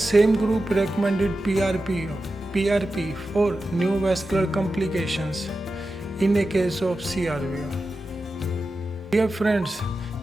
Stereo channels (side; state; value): both; normal; correlation 0.92